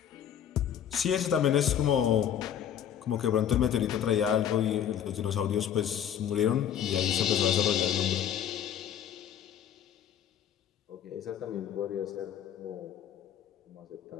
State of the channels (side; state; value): right; quieter; 9.5 dB